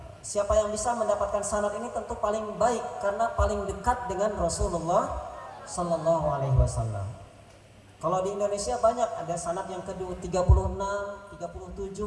Siapa yang bisa mendapatkan sanad ini tentu paling baik karena paling dekat dengan Rasulullah Sallallahu Alaihi Wasallam. Kalau di Indonesia banyak, ada sanad yang kedua 36,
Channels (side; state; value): both; identical; correlation 1.00